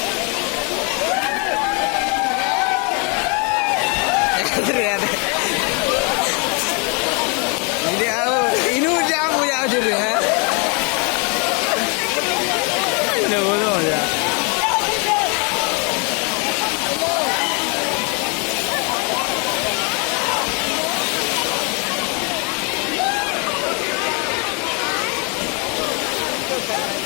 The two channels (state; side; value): quieter; right; 34.0 dB